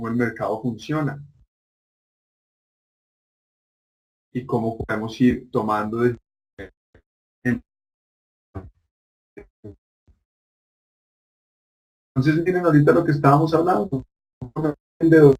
el mercado funciona y cómo podemos ir tomando entonces miren ahorita lo que estábamos hablando.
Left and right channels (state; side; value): identical; both; correlation 1.00